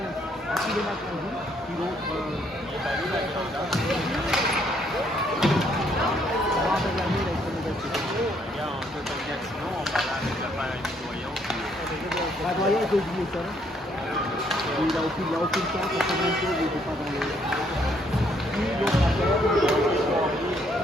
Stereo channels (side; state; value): both; normal; correlation 0.69